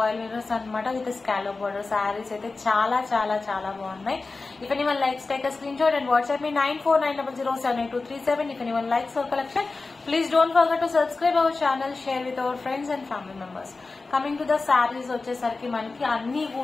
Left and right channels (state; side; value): quieter; right; 3.8 dB